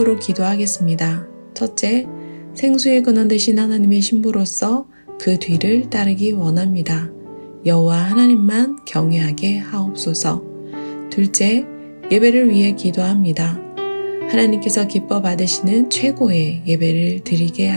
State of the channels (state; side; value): inverted; both; correlation -1.00